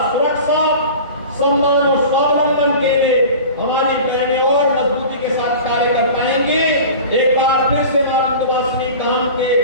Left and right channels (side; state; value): both; inverted; correlation -0.37